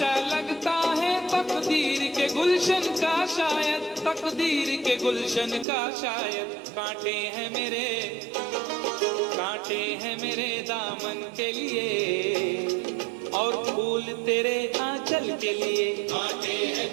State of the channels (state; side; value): drops out; left; at 5.7 s